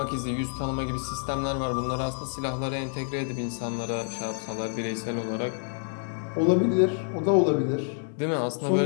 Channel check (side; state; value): right; silent; 60 dB below the other